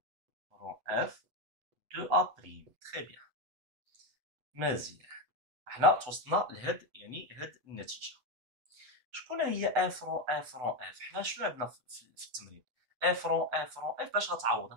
اف دو ا بريم. تري بيان. مزيان، حنا توصلنا لهاد يعني هاد النتيجه. شكون هي اف رون اف؟ حنا شنو عندنا في التمرين؟ اف رون اف باش غتعوضها؟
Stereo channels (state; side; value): late; left; 8.0 ms